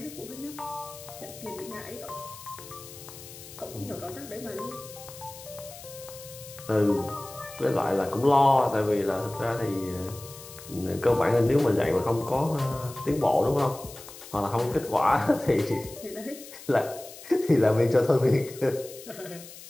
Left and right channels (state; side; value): noise; left; hiss, 16 dB below the sound